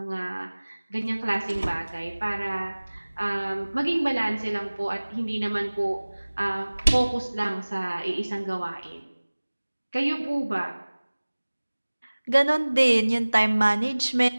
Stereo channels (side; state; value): both; inverted; correlation -1.00